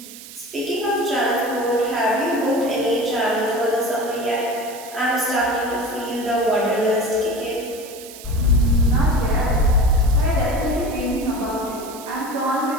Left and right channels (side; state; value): right; noise; hiss, 16 dB below the sound